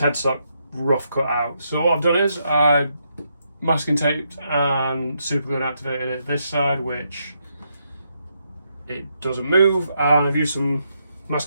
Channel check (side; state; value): both; inverted; correlation -0.79